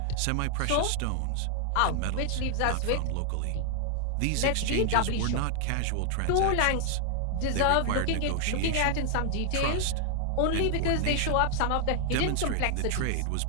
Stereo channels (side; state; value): both; different; correlation 0.00